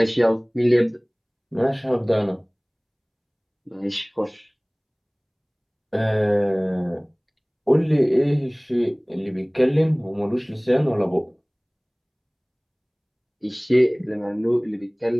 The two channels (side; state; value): both; identical; correlation 1.00